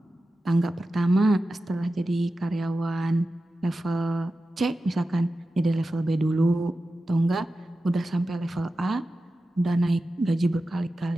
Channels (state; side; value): normal; both; correlation 0.93